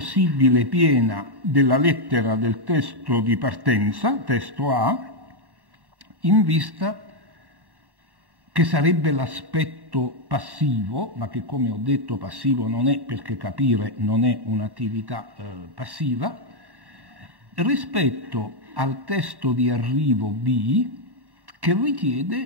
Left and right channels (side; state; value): left; late; 1.1 ms